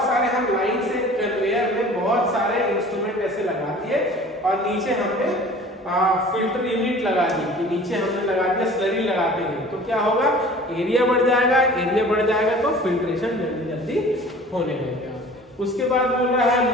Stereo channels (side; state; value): both; normal; correlation 0.45